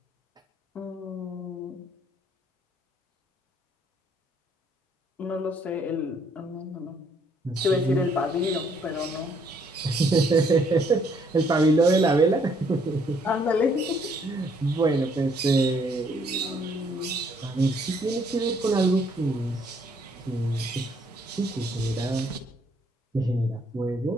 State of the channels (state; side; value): normal; both; correlation 0.67